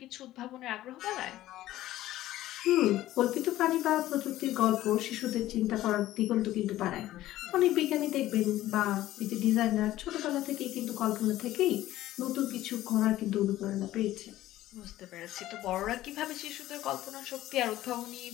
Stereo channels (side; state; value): right; quieter; 14.8 dB